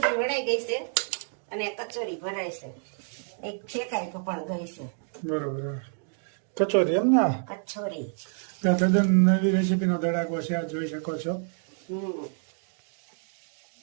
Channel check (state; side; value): silent; left; 58 dB below the other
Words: વણાઈ ગઈ છે અને કચોરી ભરાય છે, એક શેકાઈ પણ ગઈ છે. બરોબર. કચોરી એમ ને? કચોરી તદ્દન નવી રેસીપીનો ધડાકો છે, આ જોઈ શકો છો.